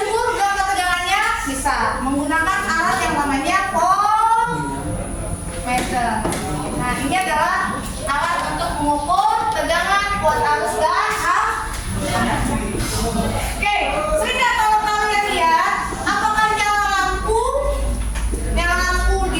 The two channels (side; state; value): both; identical; correlation 1.00